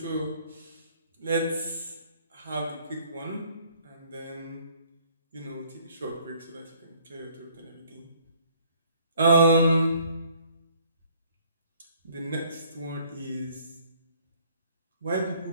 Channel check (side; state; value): both; inverted; correlation -0.60